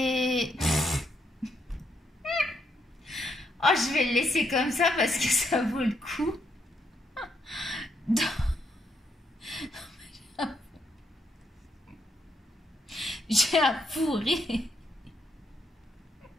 Oh, je vais le laisser comme ça parce que ça vaut le coup. J'ai un pourri.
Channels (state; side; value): normal; both; correlation 0.77